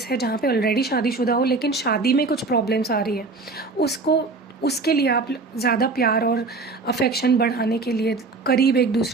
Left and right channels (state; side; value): quieter; left; 3.8 dB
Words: है जहाँ पे ऑलरेडी शादीशुदा हो लेकिन शादी में कुछ प्रॉब्लम्स आ रही है, उसके लिए आप ज़्यादा प्यार और अफेक्शन बढ़ाने के लिए, करीब एक